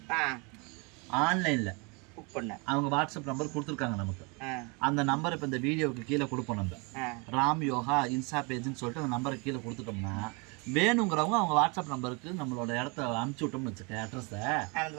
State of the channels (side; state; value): left; quieter; 30.8 dB